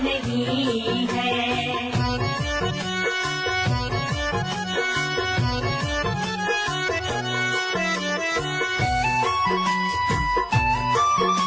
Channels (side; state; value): both; identical; correlation 1.00